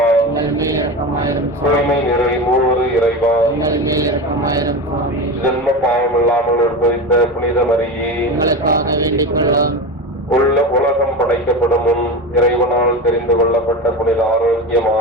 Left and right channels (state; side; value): normal; both; correlation 0.24